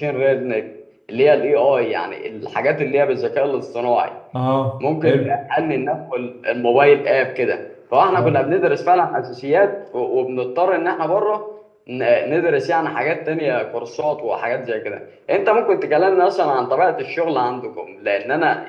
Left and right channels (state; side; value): identical; both; correlation 1.00